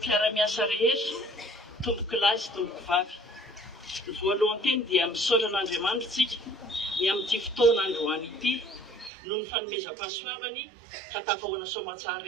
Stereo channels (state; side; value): drops out; left; at 9.1 s